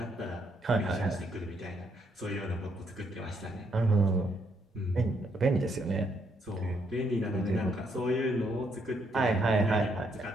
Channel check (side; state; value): both; normal; correlation 0.74